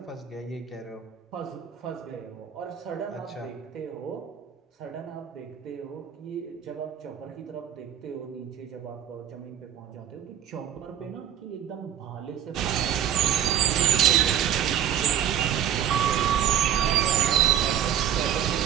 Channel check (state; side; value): quieter; left; 9.9 dB